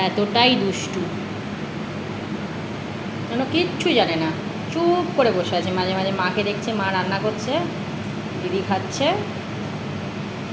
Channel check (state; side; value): identical; both; correlation 1.00